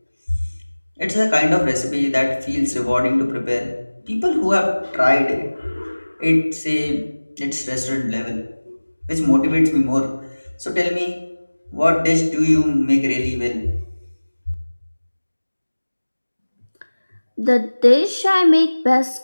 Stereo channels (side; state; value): both; inverted; correlation -1.00